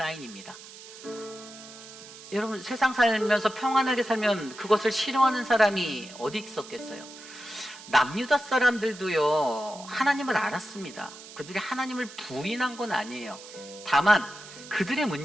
여러분, 세상 살면서 평안하게 살면 그것을 싫어하는 사람이 어디 있었겠어요? 남유다 사람들도요, 하나님을 알았습니다. 그들이 하나님을 부인한 건 아니에요. 다만 그들의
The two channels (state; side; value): noise; right; hiss, 16 dB below the sound